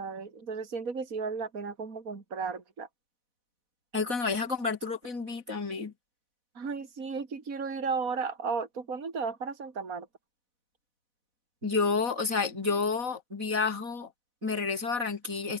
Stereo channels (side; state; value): left; late; 4.1 ms